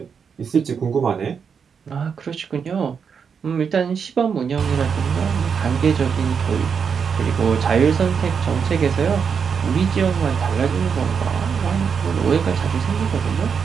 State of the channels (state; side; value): quieter; left; 6.5 dB